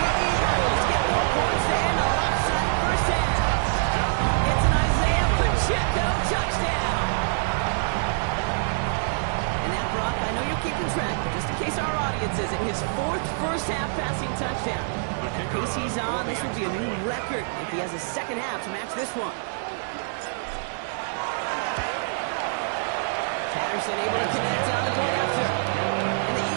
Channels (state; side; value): silent; left; digital silence